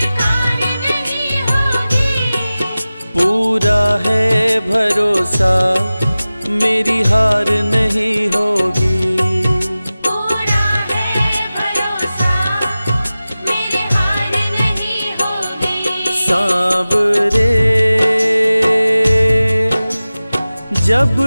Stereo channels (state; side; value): inverted; both; correlation -0.96